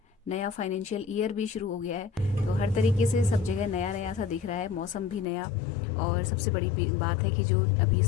नया फाइनेंशियल ईयर भी शुरू हो गया है। तो हर तरीके से सब जगह नया नया सा दिख रहा है, मौसम भी नया। और सबसे बड़ी बात है कि जो अभी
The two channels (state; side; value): drops out; right; at 5.2 s